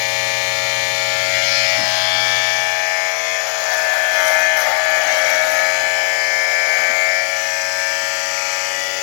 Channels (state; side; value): silent; right; digital silence